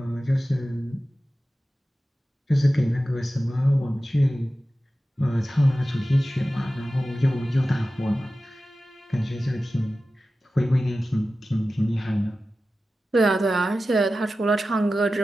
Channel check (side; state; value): both; normal; correlation 0.94